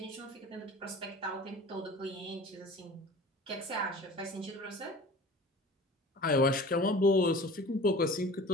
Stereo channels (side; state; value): both; normal; correlation 0.41